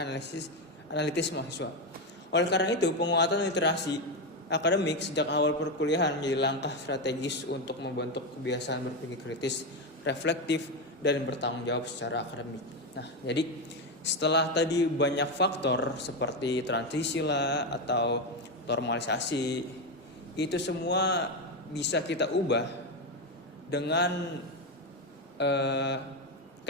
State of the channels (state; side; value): normal; both; correlation 0.10